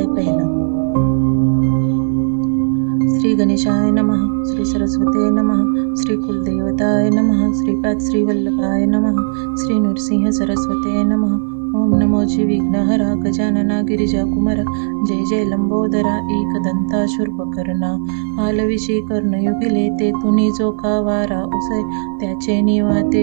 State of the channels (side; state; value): left; silent; digital silence